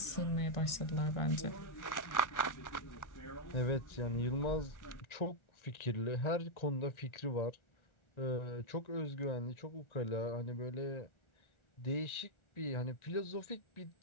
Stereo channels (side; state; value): right; late; 1.4 ms